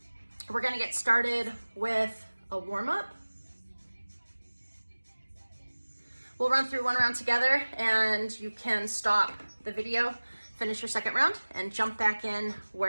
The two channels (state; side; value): inverted; both; correlation -1.00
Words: We're gonna get started with a warm-up. We'll run through one round together and you can stop the video, finish your second round, and jump back in